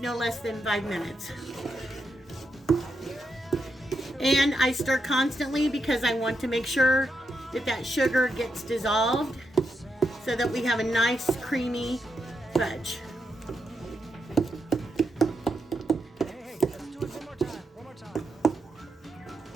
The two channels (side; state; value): both; normal; correlation 0.83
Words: less than 5 minutes. And I stir constantly because I want to make sure that sugar gets dissolved so that we have a nice creamy fudge.